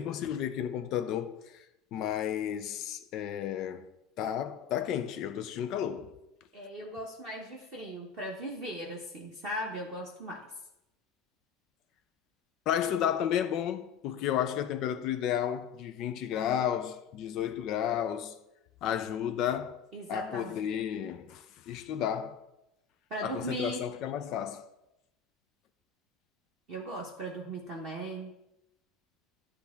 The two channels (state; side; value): quieter; right; 7.5 dB